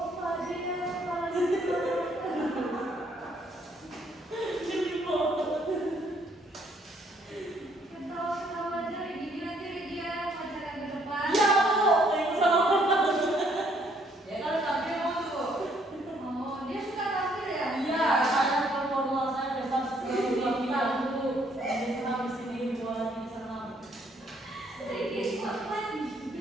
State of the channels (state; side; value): normal; both; correlation 0.67